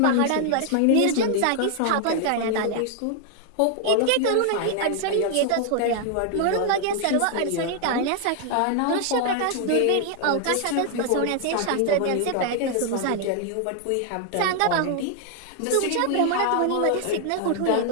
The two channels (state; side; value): different; both; correlation 0.00